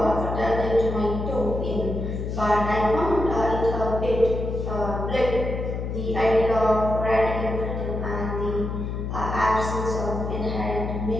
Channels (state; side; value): noise; left; hum, 4 dB below the sound